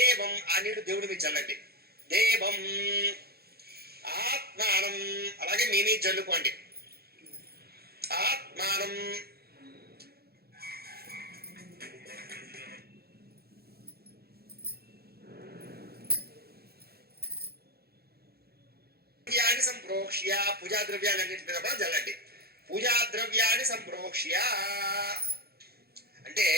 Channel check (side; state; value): left; late; 0.46 ms